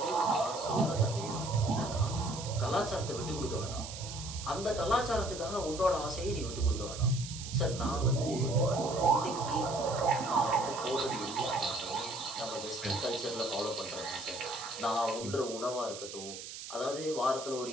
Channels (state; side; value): noise; right; hiss, 10 dB below the sound